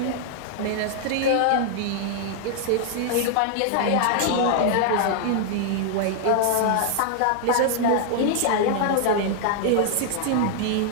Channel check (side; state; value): both; different; correlation -0.01